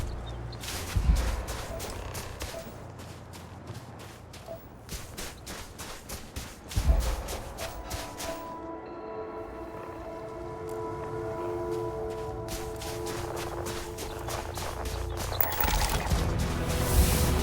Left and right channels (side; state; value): both; identical; correlation 1.00